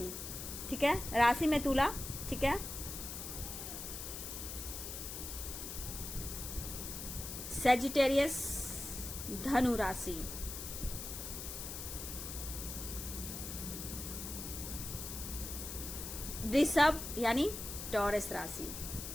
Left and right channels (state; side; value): noise; left; hiss, 7 dB below the sound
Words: ठीक है। राशि में तुला, ठीक है। सेजिटेरियस, धनु राशि, वृषभ यानी टॉरस राशि।